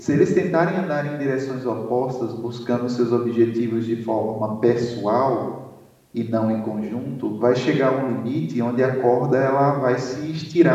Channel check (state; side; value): identical; both; correlation 1.00